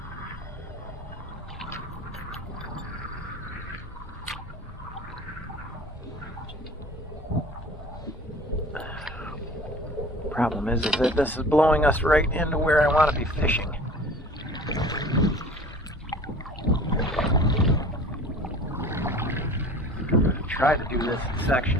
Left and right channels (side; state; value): both; normal; correlation 0.43